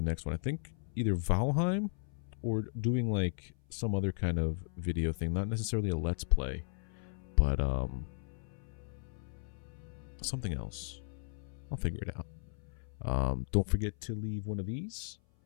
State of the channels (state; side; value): silent; right; 54 dB below the other